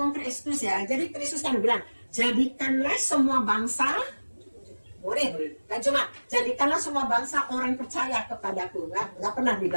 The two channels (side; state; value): both; inverted; correlation -1.00